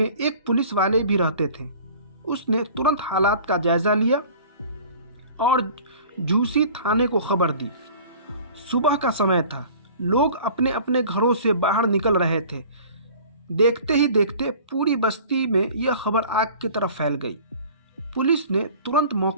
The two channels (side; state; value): both; inverted; correlation -0.45